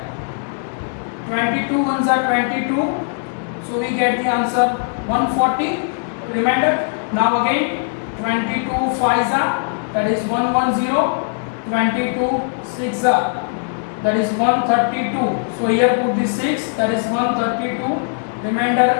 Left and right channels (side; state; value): right; silent; digital silence